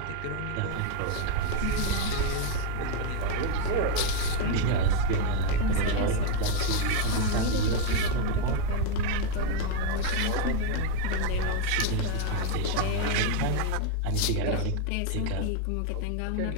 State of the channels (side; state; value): both; different; correlation 0.01